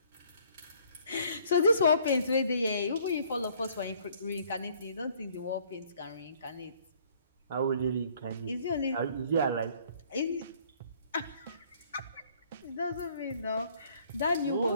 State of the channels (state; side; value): inverted; both; correlation -0.59